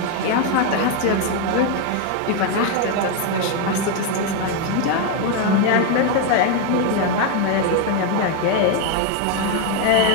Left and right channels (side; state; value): both; different; correlation 0.01